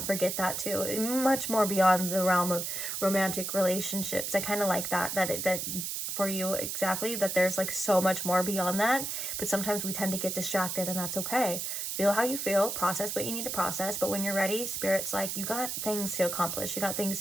forget that too. Much more beyond the realm of romantic relationships. I kind of like that for you, exactly, that there's like so much more beyond that. But sometimes we tend to get distracted, and that's okay. Feel how you feel, process what you need to process. But when you're ready, Spirit's like, you got things to accomplish. You got things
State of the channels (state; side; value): noise; right; hiss, 3 dB below the sound